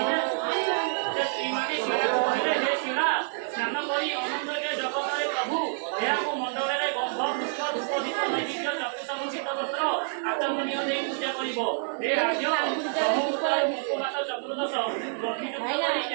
ସେ ସ୍ତ୍ରୀମାନେ ଶିଳାକୁ କହିଲେ ହେ ଶିଳା, ସ୍ନାନ କରି ଅନନ୍ତକେ ଜଗତରେ ପ୍ରଭୁ ଏହାକୁ ମଣ୍ଡଳରେ ଗନ୍ଧ ପୁଷ୍ପ ଧୂପ ଦୀପ ନୈବେଦ୍ୟ ଚତୁର୍ସମୁଚିତ ବସ୍ତ୍ର ଆଚମନୀୟ ଦେଇ ପୂଜା କରିବ। ହେ ରାଜ୍ୟ ବ୍ରହ୍ମପୁତ୍ର ମୁଖପାତ ଚତୁର୍ଦଶ ଗଣ୍ଠିଯୁକ୍ତ କରି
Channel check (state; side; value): silent; left; digital silence